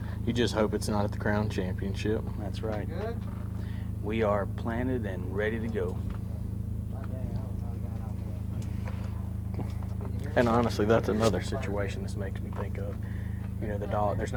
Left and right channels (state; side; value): identical; both; correlation 1.00